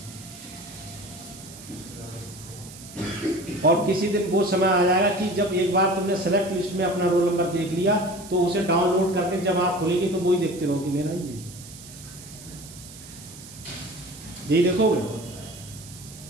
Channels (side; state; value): right; noise; hiss, 17 dB below the sound